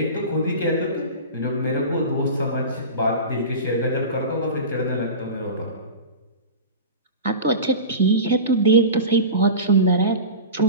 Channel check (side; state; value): both; inverted; correlation -0.31